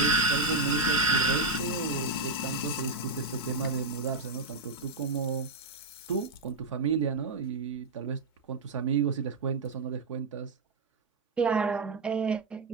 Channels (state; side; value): quieter; left; 3.3 dB